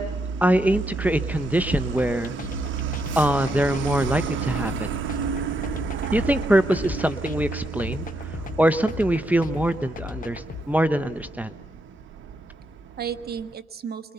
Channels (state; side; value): normal; both; correlation 0.79